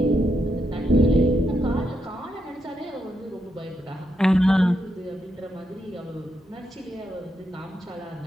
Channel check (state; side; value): normal; both; correlation 0.82